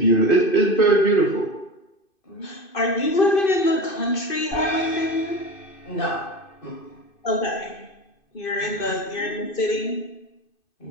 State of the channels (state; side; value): late; right; 2.5 ms